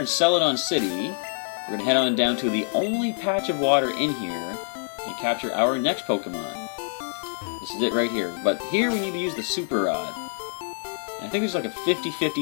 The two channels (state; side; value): silent; right; digital silence